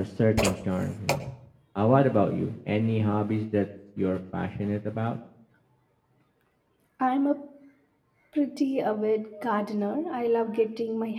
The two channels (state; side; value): identical; both; correlation 1.00